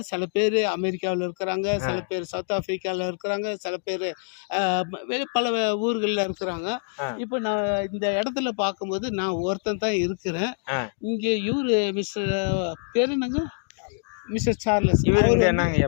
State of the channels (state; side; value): silent; right; digital silence